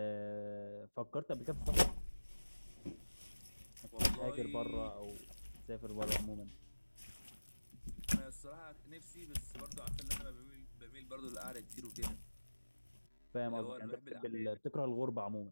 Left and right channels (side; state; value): both; inverted; correlation -1.00